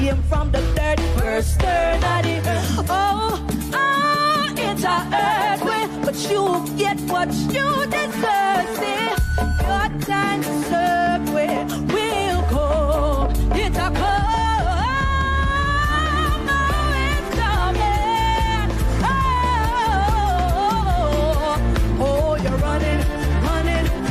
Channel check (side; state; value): both; identical; correlation 1.00